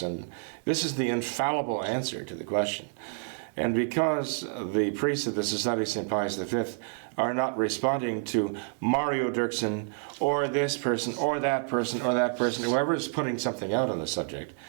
this is the infallible answer to the question. And because the priests of the Society of St. Pius V are not responding to Mario Dirksen or this person or that person or that person, whoever is putting something out on the subject,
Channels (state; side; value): silent; left; 59 dB below the other